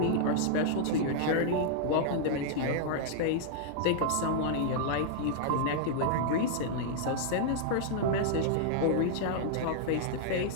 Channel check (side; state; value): both; different; correlation -0.01